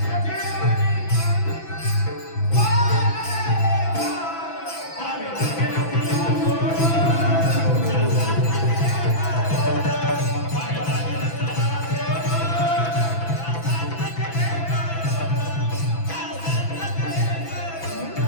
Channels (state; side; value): late; right; 6.0 ms